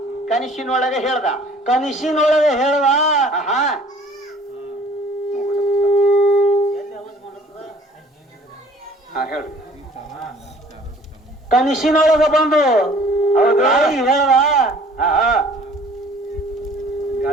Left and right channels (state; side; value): normal; both; correlation 0.53